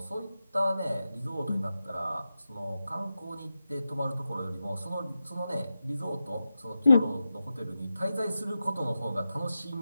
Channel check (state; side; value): inverted; both; correlation -0.91